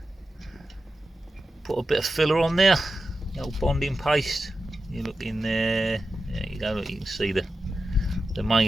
put a bit of filler on there. The old bonding paste. You look in there. There you go. Look, you can see the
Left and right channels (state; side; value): normal; both; correlation 0.91